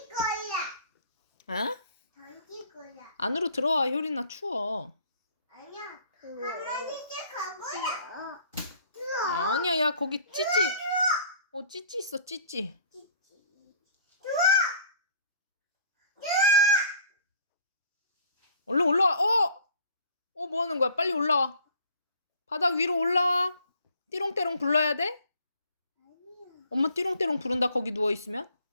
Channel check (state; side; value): inverted; both; correlation -0.53